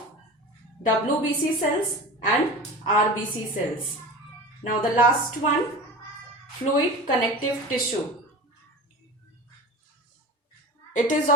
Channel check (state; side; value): normal; both; correlation 0.32